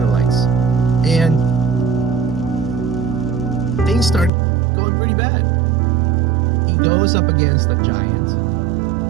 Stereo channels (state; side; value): drops out; left; at 4.3 s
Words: And things start going pretty bad. He goes up against a giant.